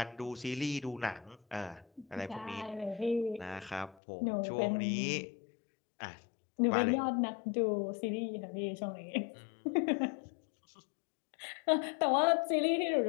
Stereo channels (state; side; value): drops out; right; at 4.0 s